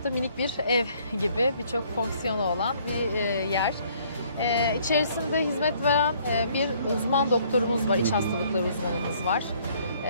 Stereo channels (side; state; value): both; inverted; correlation -0.62